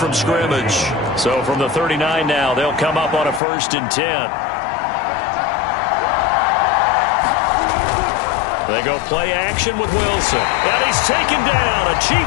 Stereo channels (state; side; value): drops out; right; at 3.4 s